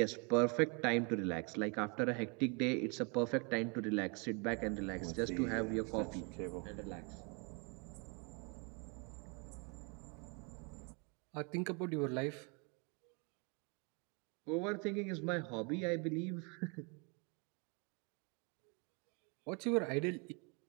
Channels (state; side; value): quieter; left; 33.9 dB